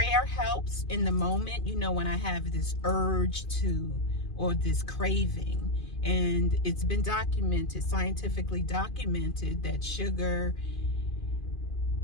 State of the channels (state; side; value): late; right; 2.4 ms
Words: helps in the moment, when I have this urge or this craving. And it's been documented, scientifically documented, that sugar